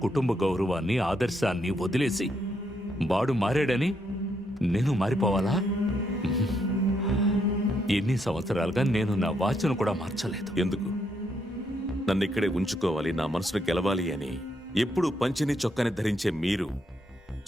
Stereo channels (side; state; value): both; normal; correlation 0.76